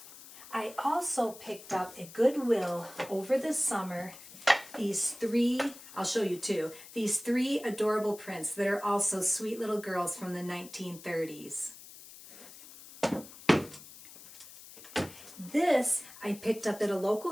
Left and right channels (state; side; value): noise; left; hiss, 17 dB below the sound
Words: I also picked up at Goodwill over the summer these three, I'll show you two, these three adorable prints that are also sweet little girls from the 1930s. This I picked up at a local